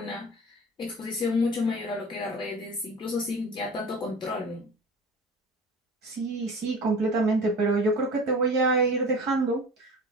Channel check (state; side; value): normal; both; correlation 0.37